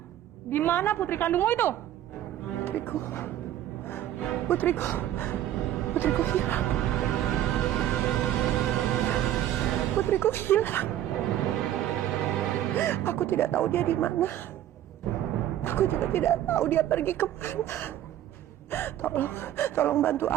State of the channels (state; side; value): quieter; left; 12.2 dB